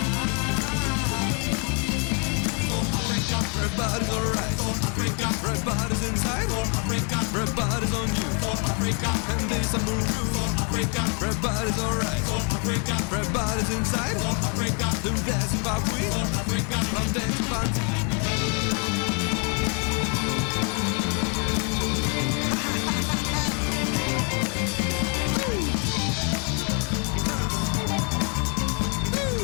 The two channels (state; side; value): quieter; right; 37.6 dB